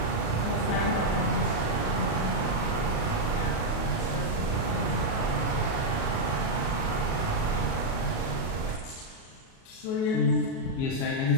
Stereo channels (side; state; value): right; late; 37 ms